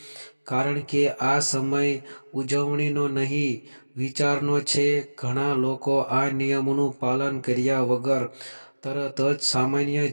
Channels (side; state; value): both; inverted; correlation -1.00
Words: કારણ કે આ સમય ઉજવણીનો નહીં, વિચારનો છે. ઘણા લોકો આ નિયમોનું પાલન કર્યા વગર તરત જ સામાન્ય